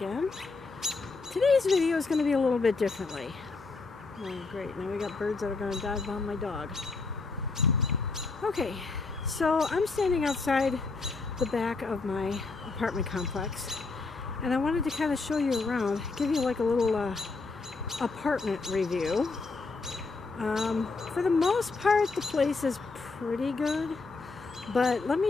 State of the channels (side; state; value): right; quieter; 4.0 dB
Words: Today's video is going to be a little bit differently. Oh, great. Now we got birds that are going to dive on my dog. Okay, so I'm standing outside the back of my apartment complex, and I wanted to kind of show you around, give you like a little apartment review. For the most part, the place is pretty good. But let